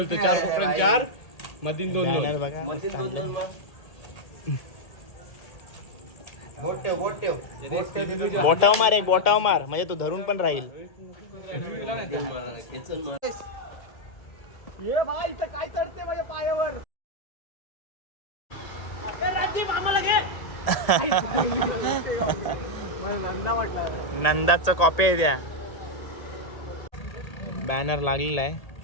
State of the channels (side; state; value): right; late; 1.8 ms